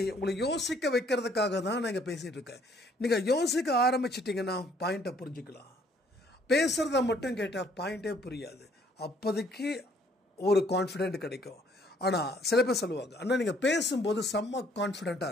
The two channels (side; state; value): both; normal; correlation 0.63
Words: உங்களை யோசிக்க வைக்கிறதுக்காக தான் நான் இங்கே பேசிகிட்டு இருக்கேன். நீங்கள் யோசிக்க ஆரம்பிச்சிட்டிங்கன்னா பாயிண்ட்டை புரிஞ்சுக்கலாம். பேசுகிறத மட்டும் கேட்டால் பாயிண்ட்டே புரியாது. அப்போதைக்கு ஒரு கான்ஃபிடென்ட் கிடைக்கும். ஆனால் சில பேர் சொல்லுவாங்க, அண்ணா நீங்கள் பேசும்போது செம்ம